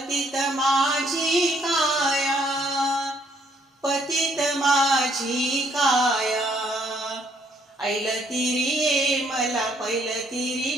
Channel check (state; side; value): normal; both; correlation 0.68